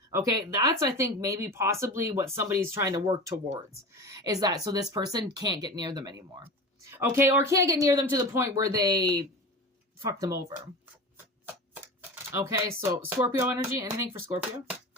Okay, that's, I think, maybe possibly what somebody's trying to work towards, is that so this person can't get near them anymore. Okay, or can't get near them to the point where they fuck them over. Okay, so Scorpio energy, anything for Scorpio?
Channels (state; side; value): normal; both; correlation 0.31